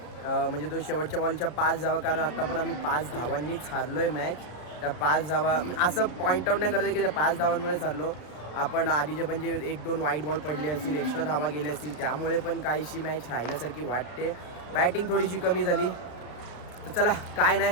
म्हणजे तो शेवटच्या बॉलच्या 5 धावा, कारण आत्ता पण आम्ही 5 धावांनीच हारलो आहे मॅच. त्या 5 धावा असं पॉईंट आउट नाही करत की त्या 5 धावांमुळेच हारलो आपण. आधीचे पण जे 1-2 वाईट बॉल पडले असतील, एक्स्ट्रा धावा गेल्या असतील, त्यामुळे पण काहीशी मॅच राहिल्यासारखी वाटते. बॅटिंग थोडीशी कमी झाली. तर चला काय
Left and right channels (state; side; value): late; right; 33 ms